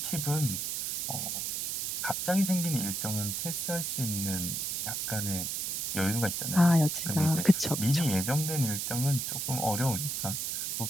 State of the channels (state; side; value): noise; right; hiss, 1 dB below the sound